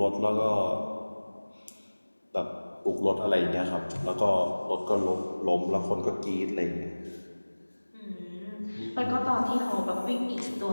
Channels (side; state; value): both; inverted; correlation -1.00